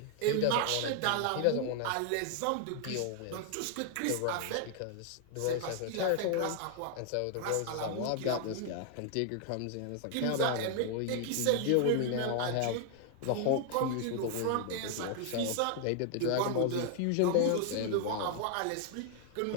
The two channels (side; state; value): both; different; correlation 0.00